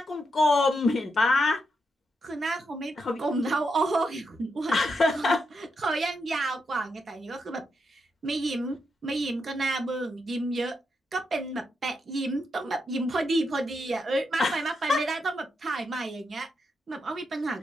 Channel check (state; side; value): normal; both; correlation 0.83